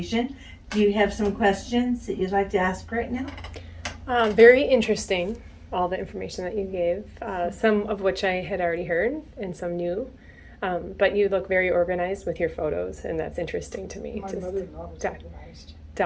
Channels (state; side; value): identical; both; correlation 1.00